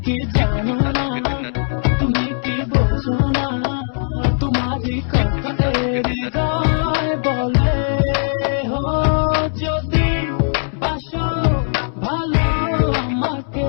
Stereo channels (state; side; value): silent; right; 67 dB below the other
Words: কি জানো না তুমি কি বোঝো না তোমারই কথা হৃদয় বলে হো যদি বাসো ভালো